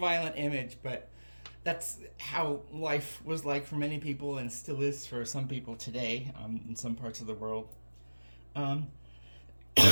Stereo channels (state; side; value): inverted; both; correlation -1.00